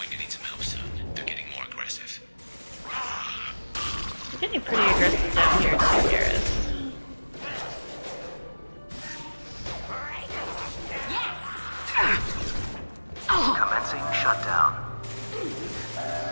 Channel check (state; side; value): inverted; both; correlation -1.00